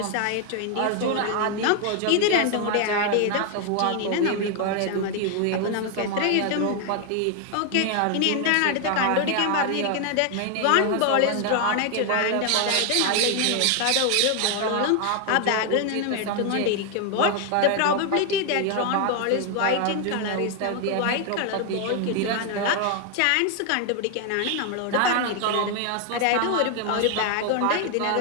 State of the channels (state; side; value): different; both; correlation 0.00